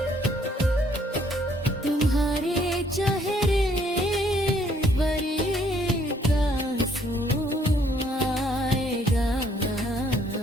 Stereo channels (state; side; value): normal; both; correlation 0.66